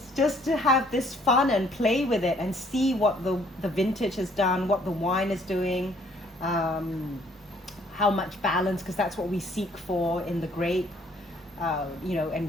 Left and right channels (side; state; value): both; normal; correlation 0.62